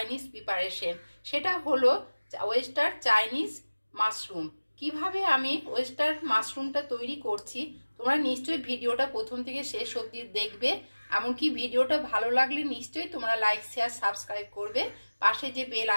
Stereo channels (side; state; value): both; inverted; correlation -1.00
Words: প্রিপারেশন। সেটা হলো ওয়েস্টার চাইনিজ মাশরুম। কিভাবে আমি ওয়েস্টার মাশরুমটা তৈরি করছি তোমরা নিশ্চয়ই ভিডিওটা প্রথম থেকে শেষ অবধি দেখবে। এমনকি ভিডিওটা ভালো লাগলে নিশ্চয়ই তোমরা লাইক শেয়ার সাবস্ক্রাইব করবে। পাশে যে বেল